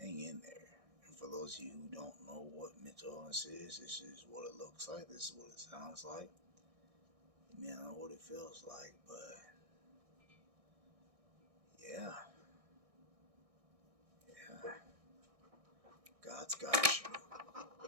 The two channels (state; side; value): late; left; 1.6 ms